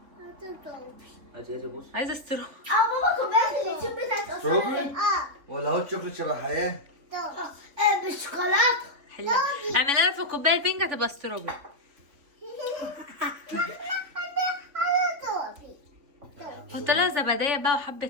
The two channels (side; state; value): left; late; 3.5 ms